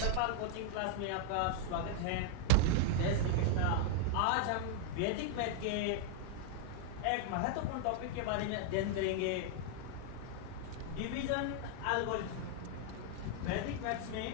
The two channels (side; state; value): both; different; correlation 0.00